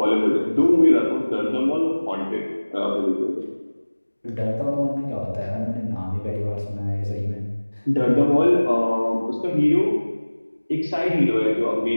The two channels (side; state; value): both; inverted; correlation -1.00